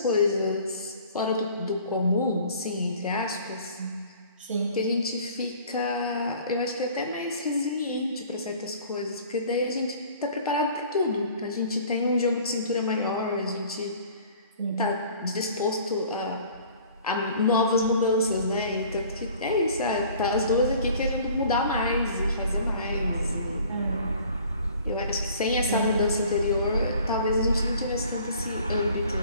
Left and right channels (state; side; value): inverted; both; correlation -0.50